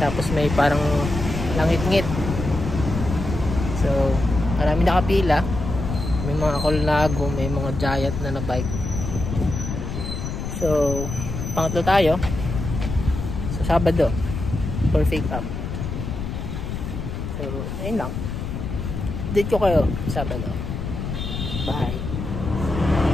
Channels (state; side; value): noise; left; rumble, 5 dB below the sound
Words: tapos may parang langit-ngit. So marami nakapila, may mga Colnago, may mga Giant na bike. So pangatlo tayo sa Sabado for pick up. So ayun lang, date ko kayo Sabado. Bye.